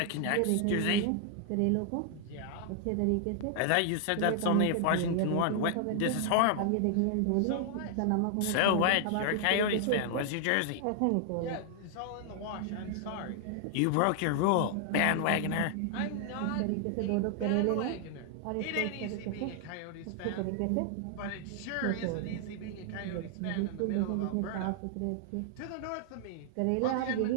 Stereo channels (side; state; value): both; different; correlation 0.00